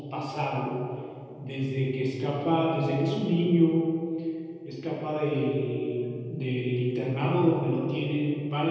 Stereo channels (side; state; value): both; identical; correlation 1.00